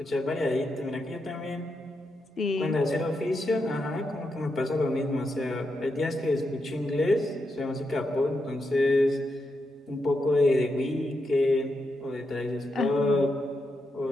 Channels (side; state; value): both; normal; correlation 0.85